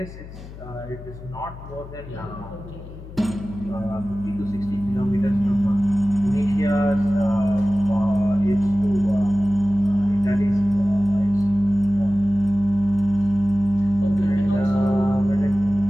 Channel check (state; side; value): noise; left; hum, 15 dB below the sound